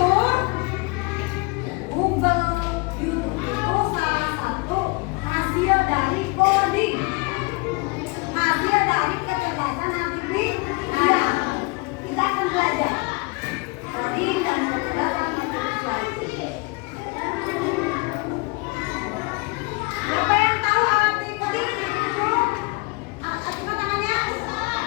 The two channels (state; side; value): quieter; right; 26.7 dB